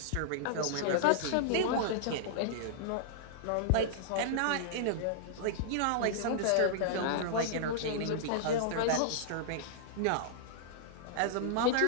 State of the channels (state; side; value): different; both; correlation -0.01